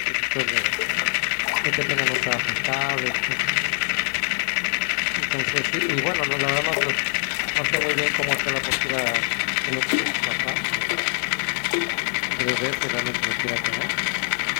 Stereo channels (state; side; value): silent; right; digital silence